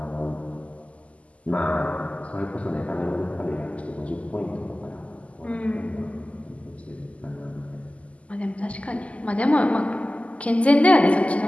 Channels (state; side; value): late; right; 0.064 ms